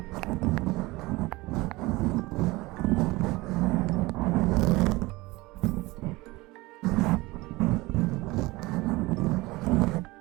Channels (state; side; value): quieter; left; 21.5 dB